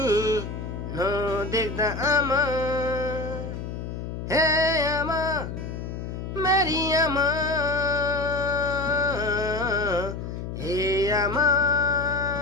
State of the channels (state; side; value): noise; left; hum, 7 dB below the sound